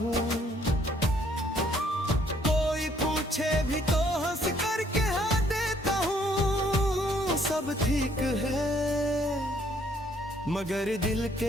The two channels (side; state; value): both; normal; correlation 0.65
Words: कोई पूछे भी तो हंस कर कह देता हूँ सब ठीक है, मगर दिल